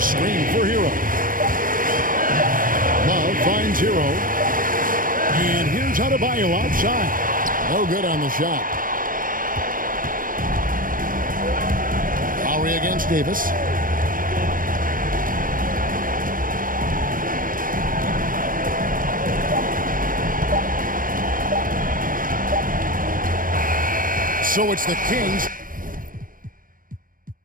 screen for Hero. Love finds Hero. And here's Adebayo outside. No good on the shot. Lowry against Davis. So it's the Kings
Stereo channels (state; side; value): late; left; 0.40 ms